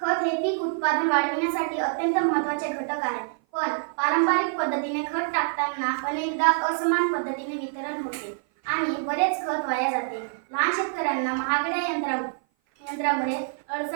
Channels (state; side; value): silent; left; 56 dB below the other